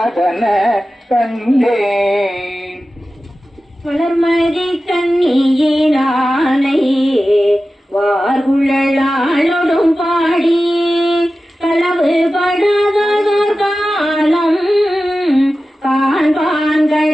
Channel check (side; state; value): both; normal; correlation 0.94